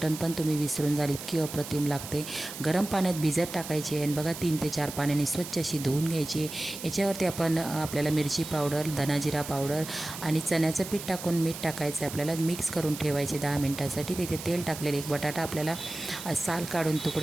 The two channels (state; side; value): noise; right; hiss, 10 dB below the sound